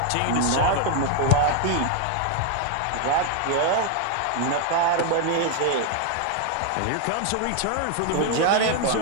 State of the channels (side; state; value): both; different; correlation 0.00